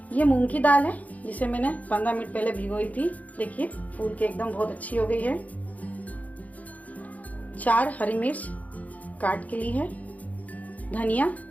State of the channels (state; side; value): late; right; 0.074 ms